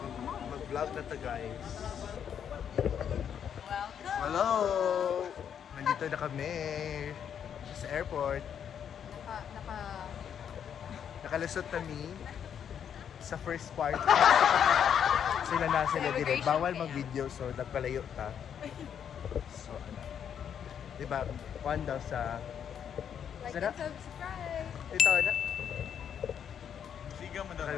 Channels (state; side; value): quieter; right; 8.4 dB